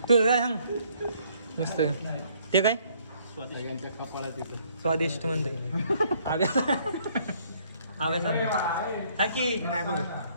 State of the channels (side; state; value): both; inverted; correlation -0.64